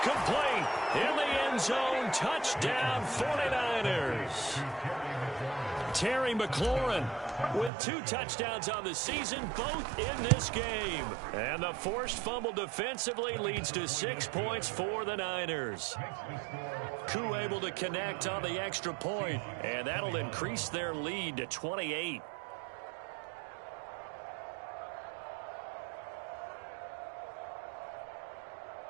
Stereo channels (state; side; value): drops out; left; at 7.7 s